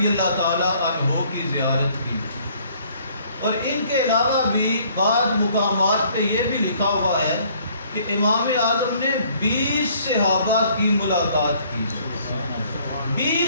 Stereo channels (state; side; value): inverted; both; correlation -0.60